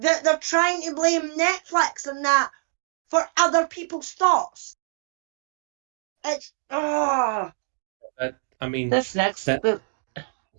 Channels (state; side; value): silent; left; digital silence